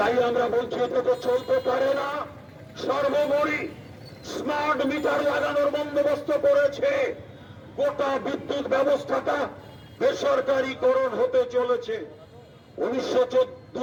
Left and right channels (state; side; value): identical; both; correlation 1.00